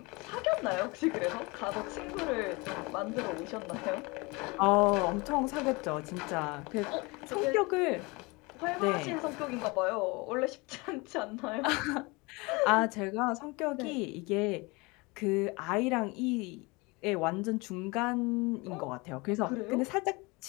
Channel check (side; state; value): right; quieter; 25.9 dB